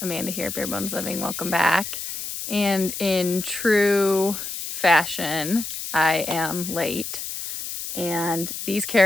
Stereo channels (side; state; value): left; noise; hiss, 6 dB below the sound